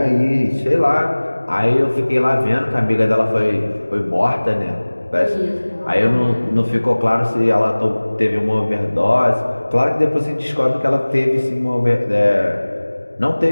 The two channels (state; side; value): inverted; both; correlation -1.00